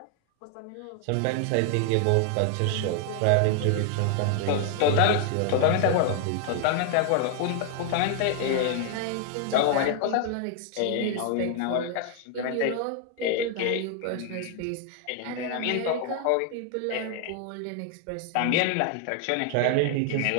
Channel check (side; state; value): both; different; correlation 0.00